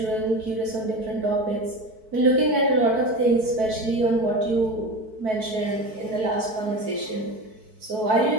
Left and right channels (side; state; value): left; late; 4.5 ms